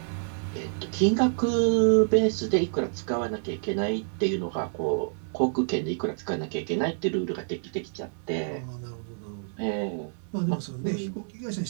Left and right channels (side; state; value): left; silent; digital silence